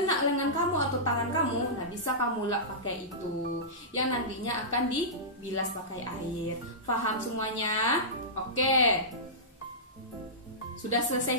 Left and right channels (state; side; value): normal; both; correlation -0.16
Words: lengan kamu atau tangan kamu, nah bisa kamu lap pakai itu yang nantinya akan dibilas pakai air. Paham semuanya? Oke. Sudah selesai